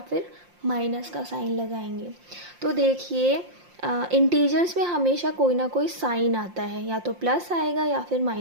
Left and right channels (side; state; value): left; late; 5.7 ms